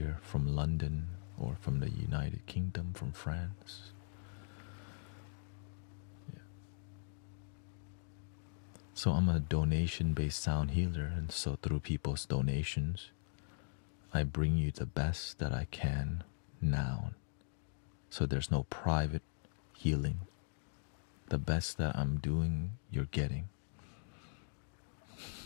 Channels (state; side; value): silent; right; digital silence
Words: from London or from the United Kingdom, from France. So I'm a donation-based sound healer, and so through people's donations, I bring you the best that I can now. So there's no private healing. The best that I'm doing, you're getting.